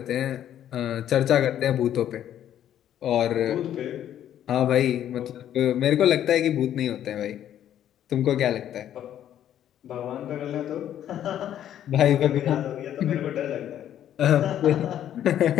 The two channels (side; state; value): right; quieter; 10.9 dB